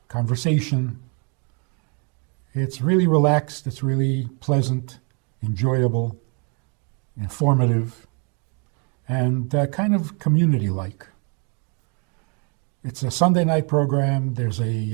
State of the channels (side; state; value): left; quieter; 34.4 dB